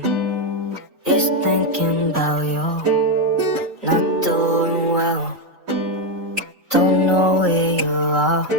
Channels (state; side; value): normal; both; correlation 0.06